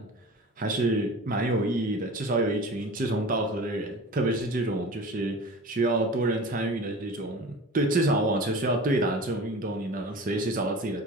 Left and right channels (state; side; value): normal; both; correlation 0.37